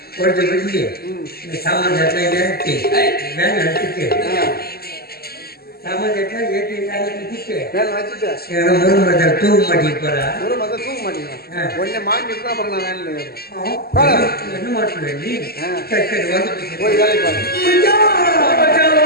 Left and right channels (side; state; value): right; late; 0.45 ms